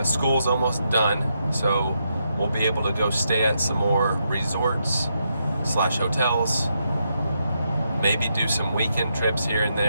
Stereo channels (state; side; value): inverted; both; correlation -0.81